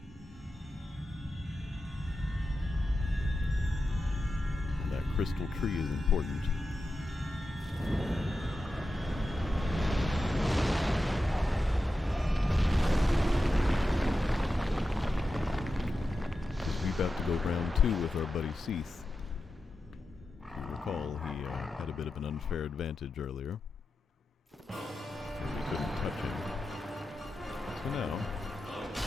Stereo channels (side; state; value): both; normal; correlation 0.91